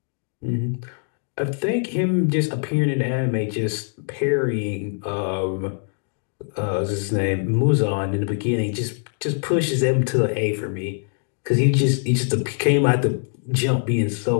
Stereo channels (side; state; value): right; silent; 60 dB below the other